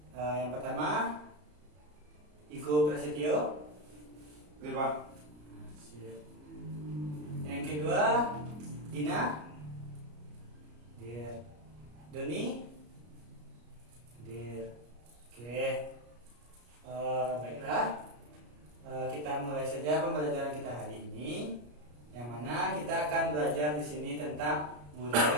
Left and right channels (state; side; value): late; left; 33 ms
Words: Yang pertama, Igo Prasetyo. Oke Pak. Yang kedua, Dina. Dir. Doni. Dir. Oke. Baiklah. Kita mulai saja pembelajaran kita hari ini, yang mana kita akan belajar di sini tentang